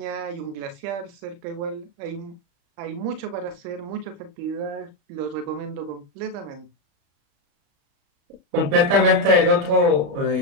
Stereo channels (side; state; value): left; late; 35 ms